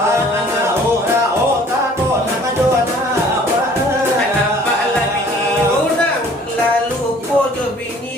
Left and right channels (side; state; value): both; normal; correlation 0.53